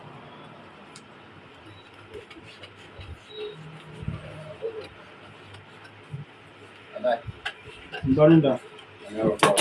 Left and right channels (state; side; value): identical; both; correlation 1.00